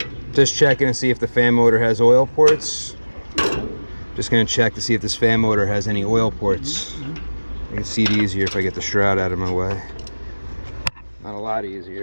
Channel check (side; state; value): both; inverted; correlation -1.00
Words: Just checking to see if the fan motor has oil ports. Just going to check to see if this fan motor has any oil ports. I can see it easier if I get the shroud out of my way. Not a lot